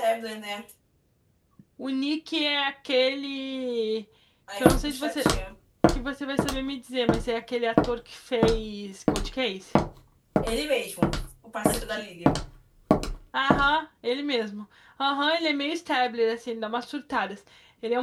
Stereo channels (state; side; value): identical; both; correlation 1.00